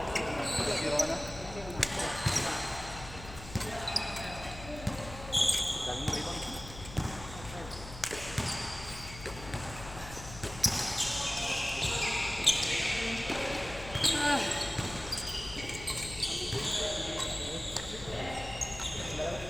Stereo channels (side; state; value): left; noise; hum, 13 dB below the sound